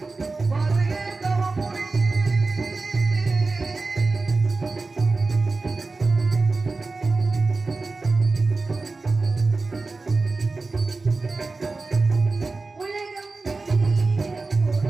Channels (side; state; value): left; quieter; 3.7 dB